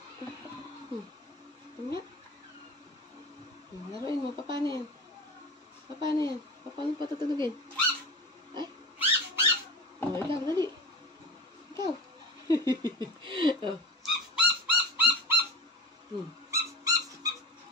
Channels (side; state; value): both; normal; correlation 0.30